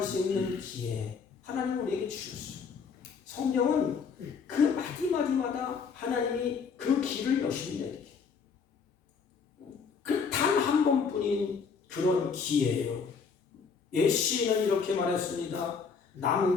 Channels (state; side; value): quieter; right; 5.7 dB